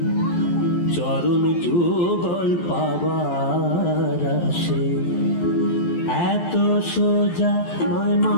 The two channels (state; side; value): late; right; 11 ms